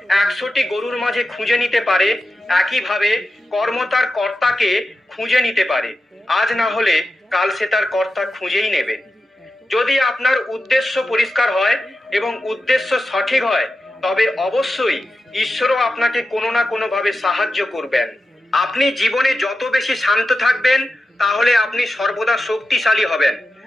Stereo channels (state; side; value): normal; both; correlation 0.91